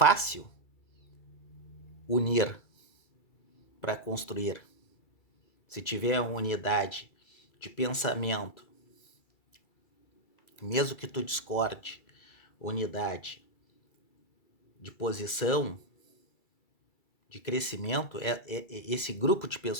unir para construir, se tiver uma unidade de pensamento, mesmo que tu discorde, unidade de posição, de crescimento, esse grupo de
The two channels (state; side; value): late; right; 2.3 ms